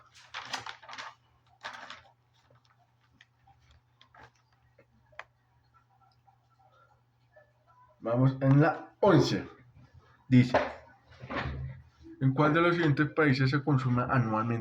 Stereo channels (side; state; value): both; identical; correlation 1.00